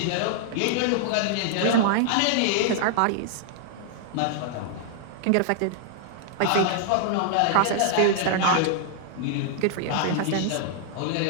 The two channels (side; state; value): both; different; correlation -0.01